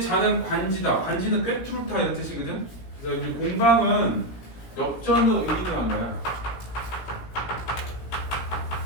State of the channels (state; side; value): late; right; 17 ms